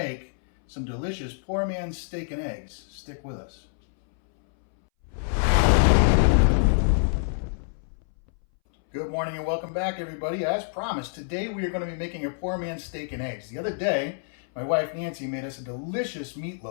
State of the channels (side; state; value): right; silent; 61 dB below the other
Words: some delicious poor man's steak and eggs. Stick with us. Good morning and welcome back, everybody. As promised, today we are going to be making a poor man's steak and eggs. The other day, my wife Nancy made us a delicious